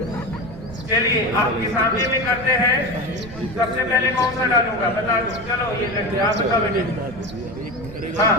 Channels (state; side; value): noise; right; rumble, 16 dB below the sound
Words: चलिए आपके सामने में करते हैं। सबसे पहले कौन सा डालूंगा बता दो। चलो ये देखते आप बताओ बेटे। हाँ